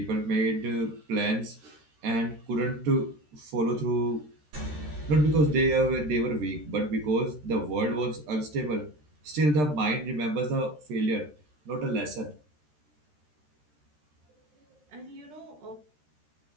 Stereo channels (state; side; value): late; left; 13 ms